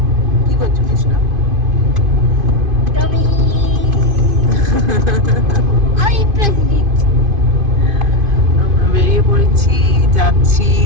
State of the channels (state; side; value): late; left; 2.5 ms